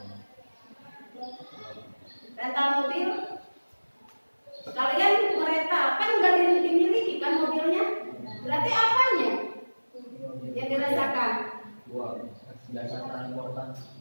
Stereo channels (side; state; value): both; inverted; correlation -1.00